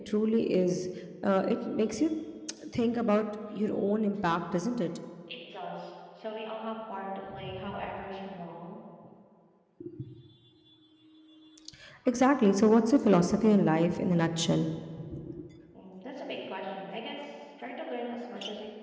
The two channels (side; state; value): both; identical; correlation 1.00